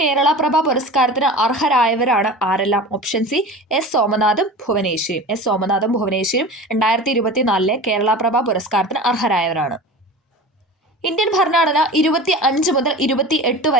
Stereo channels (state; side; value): normal; both; correlation 0.34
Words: പ്രഭ പുരസ്കാരത്തിന് അർഹരായവരാണ് ആരെല്ലാം? ഓപ്ഷൻ സി എസ് സോമനാഥും ഭുവനേശ്വരിയും. 2024 കേരള പ്രഭ പുരസ്കാരത്തിന് അർഹരായവരാണ്. ഇന്ത്യൻ ഭരണഘടന 25 മുതൽ 28